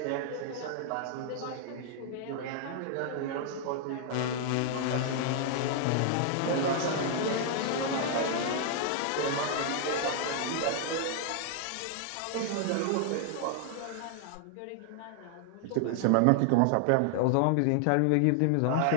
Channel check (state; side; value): different; both; correlation 0.00